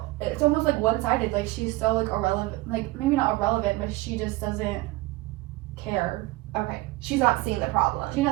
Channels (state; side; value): quieter; left; 19.8 dB